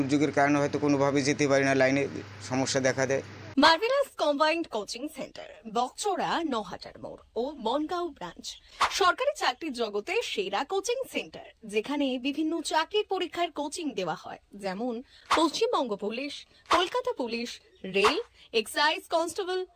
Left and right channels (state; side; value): identical; both; correlation 1.00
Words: কারণে হয়তো কোনোভাবে যেতে পারি না, লাইনে সমস্যা দেখা দেয়। মার্ভেলাস কম্বাইন্ড কোচিং সেন্টার, বকচড়া, নহাটার মোড় ও বনগাঁও ব্রাঞ্চ। সরকারি চাকরির জগতে সেরা কোচিং সেন্টার, যেখানে বিভিন্ন চাকরির পরীক্ষার কোচিং দেওয়া হয়, যেমন Paschimbanga police, Kolkata police, rail, excise constable,